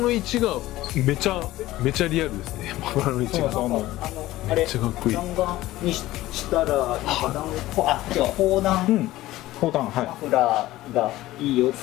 位置がめちゃリアルですね。マフラーの位置がめっちゃかっこいい。弾丸にしたら砲弾マフラーがいいよっ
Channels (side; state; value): right; quieter; 16.5 dB